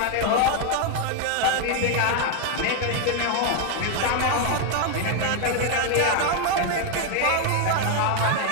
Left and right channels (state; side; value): different; both; correlation 0.01